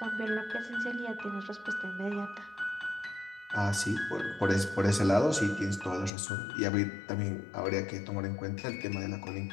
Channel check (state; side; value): drops out; right; at 6.1 s